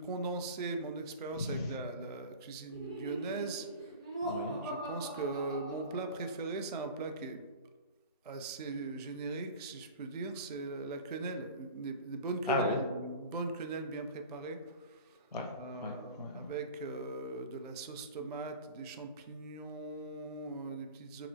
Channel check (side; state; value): both; inverted; correlation -0.36